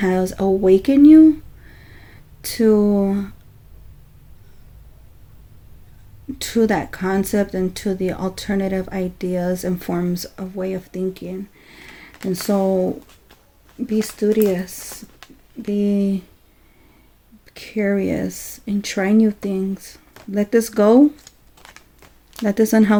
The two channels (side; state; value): both; identical; correlation 1.00